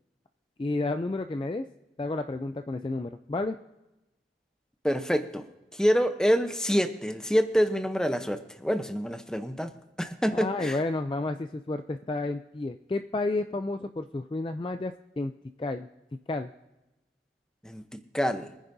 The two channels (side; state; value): both; normal; correlation 0.87